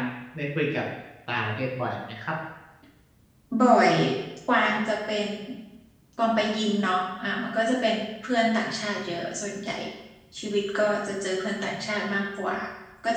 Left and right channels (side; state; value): both; identical; correlation 1.00